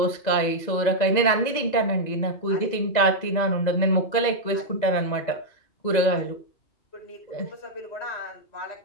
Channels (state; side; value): late; right; 2.0 ms